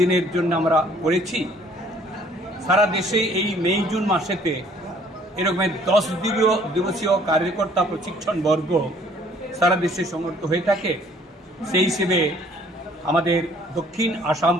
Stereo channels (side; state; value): both; normal; correlation 0.58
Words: জন্য আমরা করেছি। সারা দেশে এই মে জুন মাসেতে এরকম 10 দিবসীয় কার্যকর্তা প্রশিক্ষণ বর্গ সারা দেশে সংগঠিত হয়ে থাকে। সেই হিসেবে আমাদের দক্ষিণ আসাম